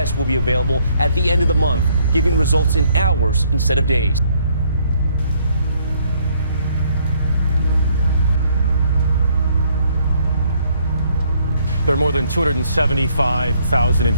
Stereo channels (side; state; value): both; inverted; correlation -0.68